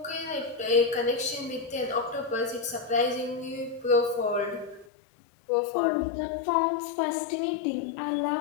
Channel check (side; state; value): right; drops out; at 4.9 s